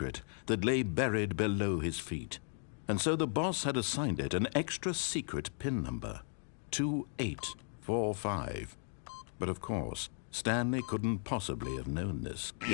that lay buried below his feet. And so the boss had assigned it an extra secret PIN number, 2845. But of course, Stanley couldn't possibly have known this.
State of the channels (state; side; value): silent; right; 54 dB below the other